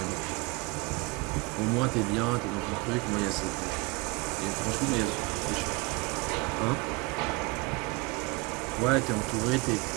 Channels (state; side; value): quieter; left; 26.3 dB